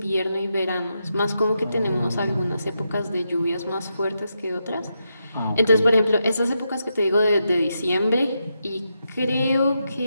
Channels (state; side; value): inverted; both; correlation -0.84